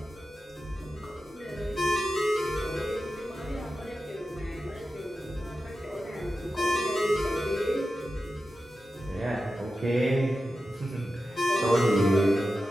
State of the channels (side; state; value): both; normal; correlation 0.92